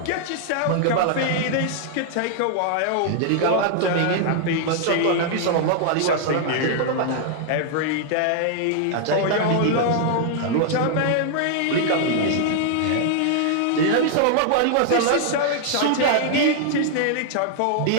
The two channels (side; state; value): both; different; correlation -0.01